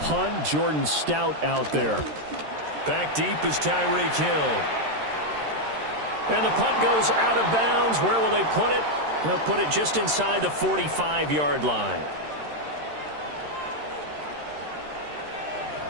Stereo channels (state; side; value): late; left; 13 ms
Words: punt. Jordan Stout out there. Back deep is Tyreek Hill. And the punt goes out of bounds. Where will they put it? They'll put it just inside the 45-yard line.